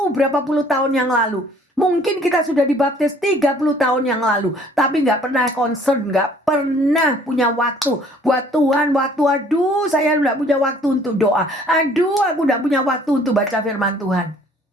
berapa puluh tahun yang lalu. Mungkin kita sudah dibaptis 30 tahun yang lalu. Tapi gak pernah concern, gak pernah punya waktu. Buat Tuhan waktu, aduh saya gak punya waktu untuk doa. Aduh aku gak punya waktu untuk baca firman Tuhan.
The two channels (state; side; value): normal; both; correlation 0.57